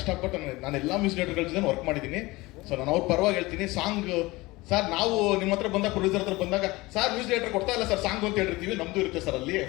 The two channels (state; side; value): quieter; right; 21.3 dB